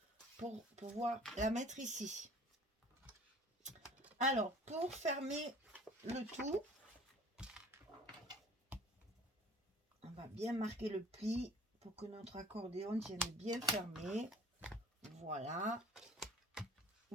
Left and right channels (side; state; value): both; normal; correlation 0.48